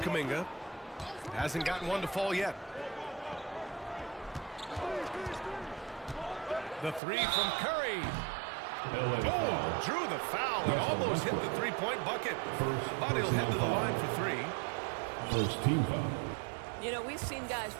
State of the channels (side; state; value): left; drops out; at 7.0 s